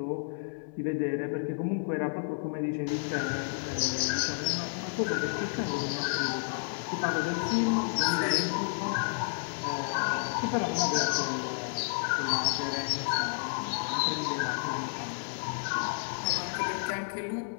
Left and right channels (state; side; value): silent; right; 57 dB below the other